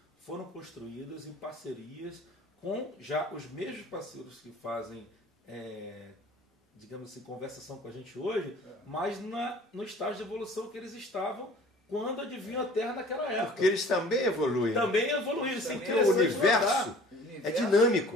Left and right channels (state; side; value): normal; both; correlation 0.48